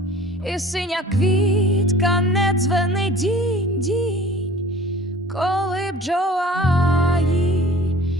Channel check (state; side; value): normal; both; correlation 0.46